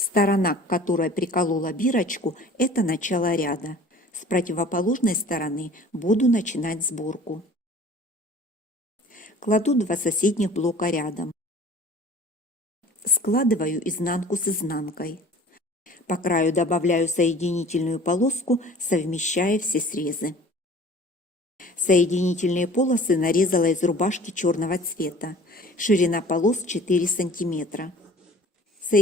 к которой приколола бирочку, это начало ряда. С противоположной стороны буду начинать сборку. Кладу 2 соседних блока рядом. Складываю изнанку с изнанкой. По краю добавляю соединительную полоску, совмещая все срезы. Соединительные полосы нарезала из рубашки черного цвета. Ширина полос 4 см.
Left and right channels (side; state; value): both; normal; correlation 0.47